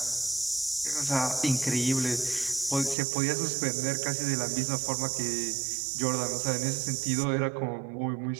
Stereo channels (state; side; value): drops out; left; at 3.0 s